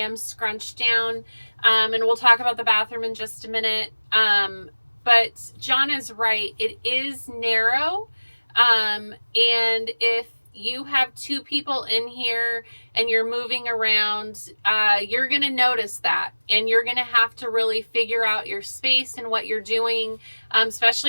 scrunched down, and we'll talk about the bathroom in just a minute. But John is right, it is narrow, and if you have two people in here and you're moving around, you're gonna notice that, and you're gonna have to really figure out your space and what you're doing,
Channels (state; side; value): inverted; both; correlation -1.00